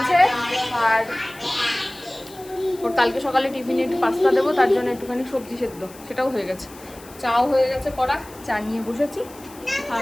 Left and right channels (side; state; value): left; noise; hiss, 21 dB below the sound